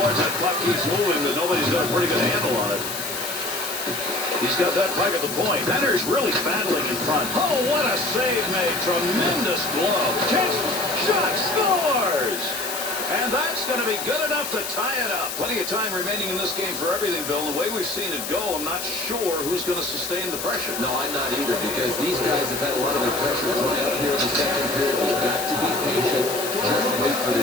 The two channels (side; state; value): left; noise; hiss, 6 dB below the sound